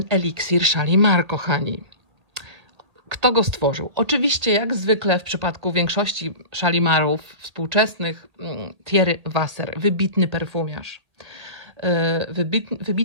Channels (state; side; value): late; left; 1.6 ms